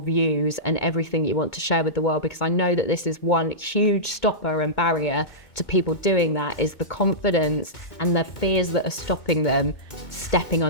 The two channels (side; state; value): right; late; 2.2 ms